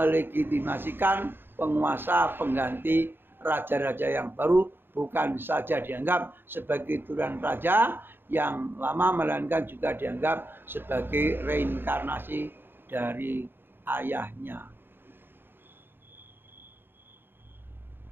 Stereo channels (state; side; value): late; left; 0.10 ms